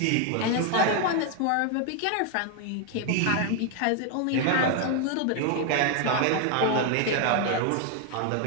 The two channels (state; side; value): different; both; correlation 0.01